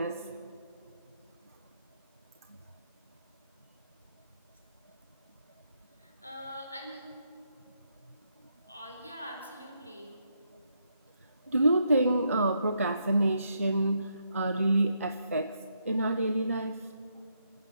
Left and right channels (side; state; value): both; inverted; correlation -0.78